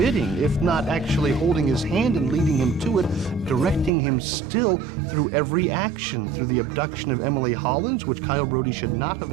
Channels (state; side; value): drops out; left; at 3.9 s